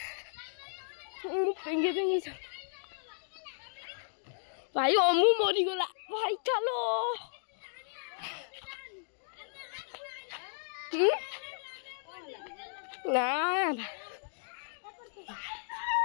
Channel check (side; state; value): right; silent; digital silence